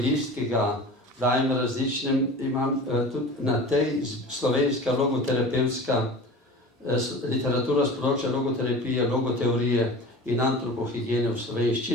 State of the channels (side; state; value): both; normal; correlation 0.37